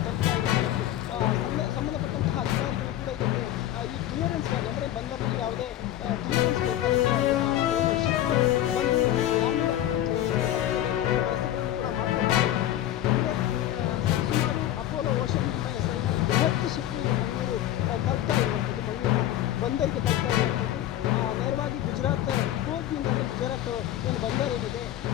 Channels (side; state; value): right; quieter; 12.8 dB